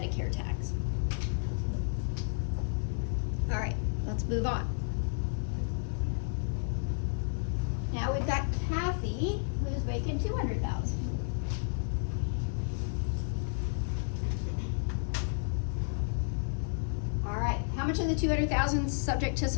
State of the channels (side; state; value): right; silent; 56 dB below the other